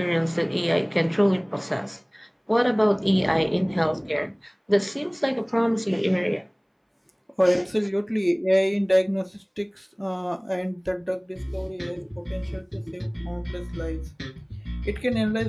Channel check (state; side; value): identical; both; correlation 1.00